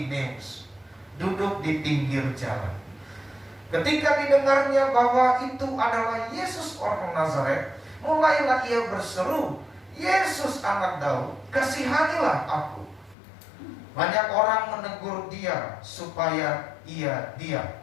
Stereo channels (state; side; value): drops out; right; at 13.2 s